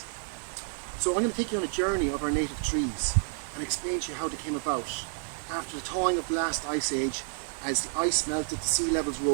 So I'm going to take you on a journey of our native trees and explain to you how they came about. After the thawing of the last ice age, as the ice melted, the sea levels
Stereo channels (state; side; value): silent; left; 58 dB below the other